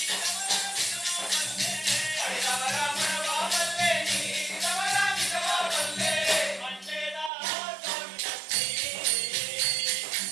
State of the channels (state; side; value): drops out; left; at 7.3 s